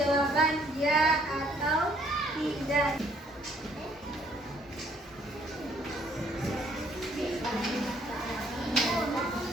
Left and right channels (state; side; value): normal; both; correlation 0.64